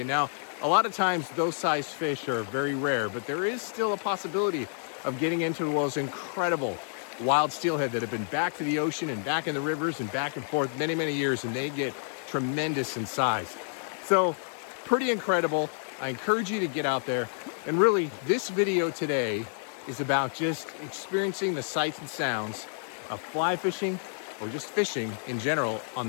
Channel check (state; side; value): silent; right; digital silence